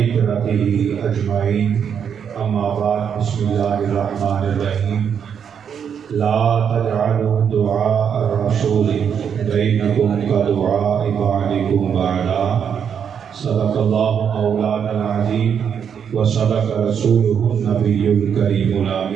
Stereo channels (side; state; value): left; quieter; 7.7 dB